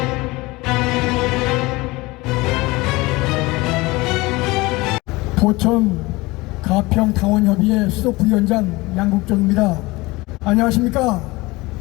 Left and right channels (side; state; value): right; quieter; 22.0 dB